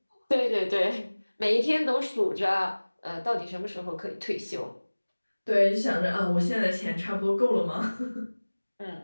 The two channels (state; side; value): inverted; both; correlation -1.00